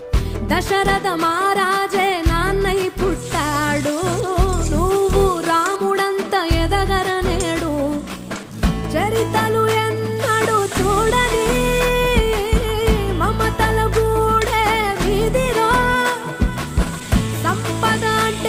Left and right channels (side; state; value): both; identical; correlation 1.00